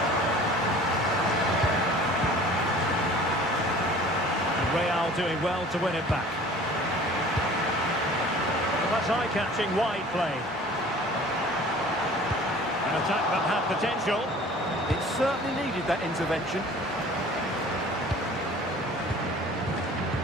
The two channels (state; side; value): normal; both; correlation 0.46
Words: Real doing well to win it back. Well, that's eye-catching wide play. An attack that had potential. It certainly needed that intervention.